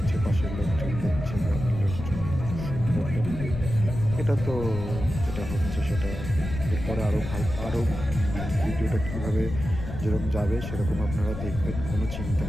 পাশের লোকজন দেখছে, গ্রামের লোকজন। সুন্দর এটা তো যেটা হচ্ছে সেটা এরপরে আরও ভিডিওটা কীভাবে যেরকম যাবে সেরকম আপনারা দেখবেন, কোনো চিন্তা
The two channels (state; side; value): noise; left; rumble, 7 dB below the sound